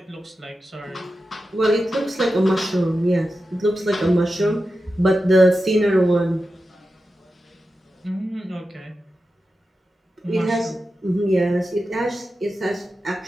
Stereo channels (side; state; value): both; normal; correlation 0.91